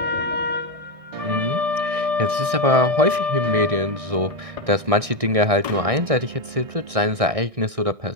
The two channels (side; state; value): left; late; 1.6 ms